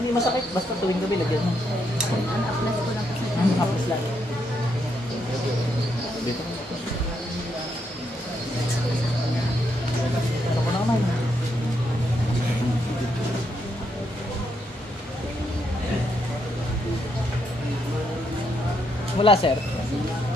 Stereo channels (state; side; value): normal; both; correlation 0.78